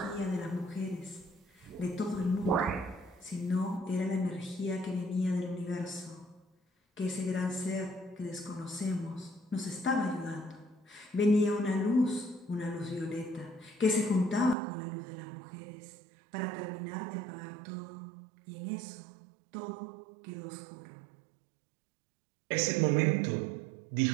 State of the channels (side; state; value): left; drops out; at 14.6 s